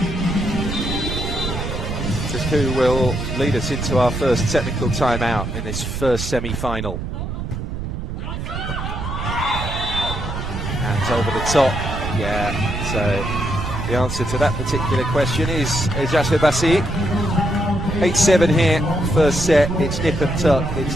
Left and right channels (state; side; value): noise; right; rumble, 5 dB below the sound